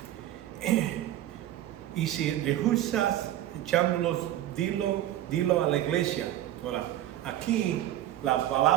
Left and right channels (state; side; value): quieter; left; 13.2 dB